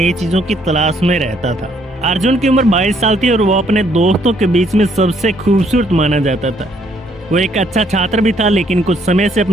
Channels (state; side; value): normal; both; correlation 0.68